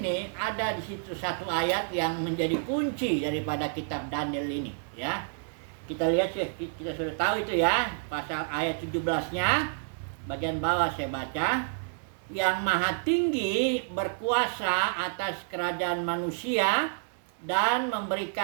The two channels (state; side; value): silent; left; 58 dB below the other